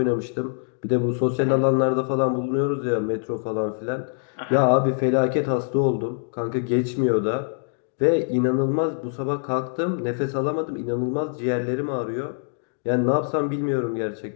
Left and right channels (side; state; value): right; silent; digital silence